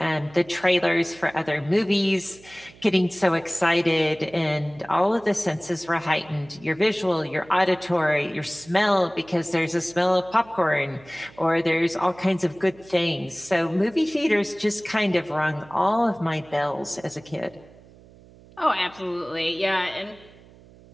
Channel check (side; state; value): right; noise; hum, 24 dB below the sound